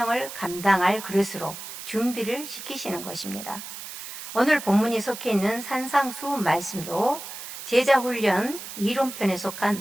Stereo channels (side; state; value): right; noise; hiss, 10 dB below the sound